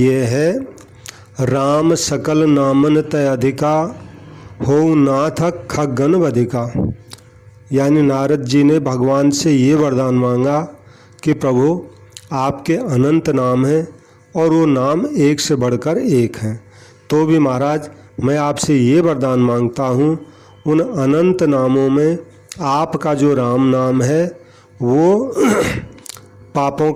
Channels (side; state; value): both; identical; correlation 1.00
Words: है, राम सकल नामन तय अधिका हो नाथ खगन वधिका। यानी नारद जी ने भगवान से ये वरदान मांगा कि प्रभु आपके अनंत नाम हैं और वो नाम एक से बढ़कर एक हैं। तो भी महाराज मैं आपसे ये वरदान मांगता हूँ, उन अनंत नामों में आपका जो राम नाम है वो पापों